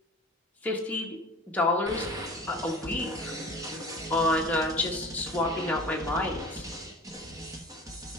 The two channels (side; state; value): both; normal; correlation 0.40